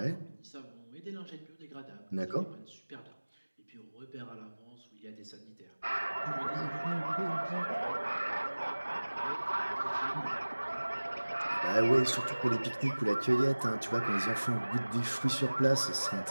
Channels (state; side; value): inverted; both; correlation -1.00